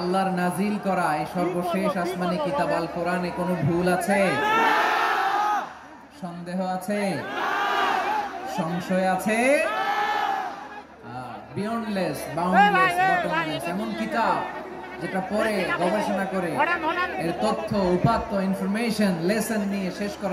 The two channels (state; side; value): identical; both; correlation 1.00